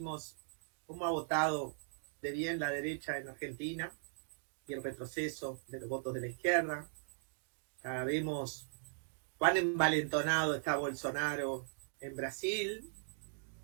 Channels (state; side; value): silent; left; digital silence